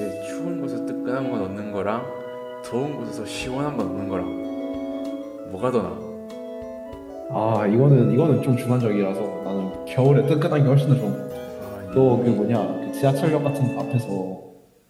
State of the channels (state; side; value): identical; both; correlation 1.00